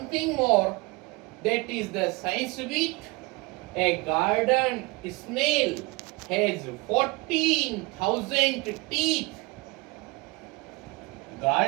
thing more, that is the science bit. A garden snail has 14,000 teeth.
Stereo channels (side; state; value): left; quieter; 25.3 dB